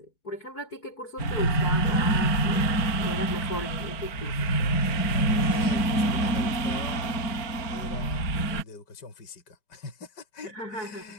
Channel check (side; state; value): right; late; 4.5 ms